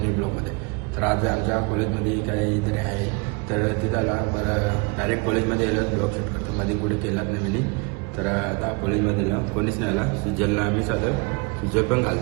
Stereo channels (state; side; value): quieter; left; 29.9 dB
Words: ब्लॉगमध्ये. तर आज आमच्या कॉलेजमध्ये काहीतरी आहे, तर तिथं आला बरं डायरेक्ट कॉलेजमध्ये आलं ब्लॉग शूट करतो. मध्ये कुठे केलाच नाही मी. तर आता कॉलेजमध्ये जा कोणीच नाही आला. सुजलला आम्ही साधं सुजल पण